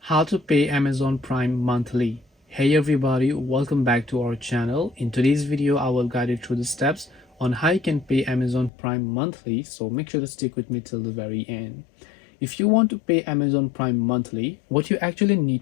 How to pay Amazon Prime monthly. Hey everybody, welcome back to our channel. In today's video I will guide you through the steps on how you can pay Amazon Prime monthly, so make sure to stick with me till the very end. If you want to pay Amazon Prime monthly, what you actually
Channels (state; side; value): drops out; right; at 8.7 s